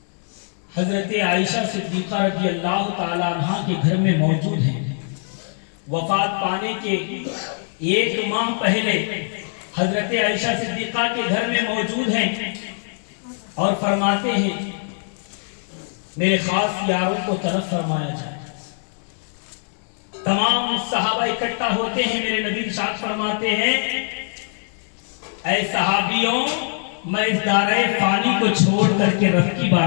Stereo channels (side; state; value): right; silent; digital silence